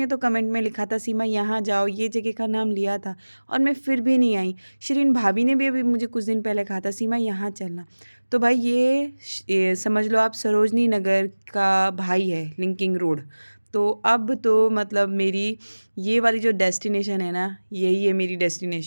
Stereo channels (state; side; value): inverted; both; correlation -1.00